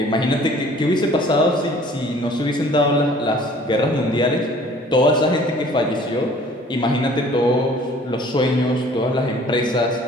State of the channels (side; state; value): both; normal; correlation 0.52